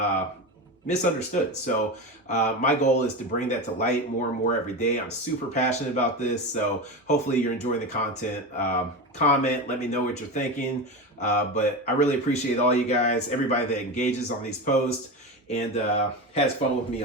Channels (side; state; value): both; normal; correlation 0.22